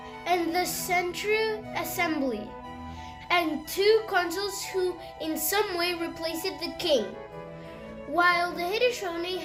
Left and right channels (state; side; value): identical; both; correlation 1.00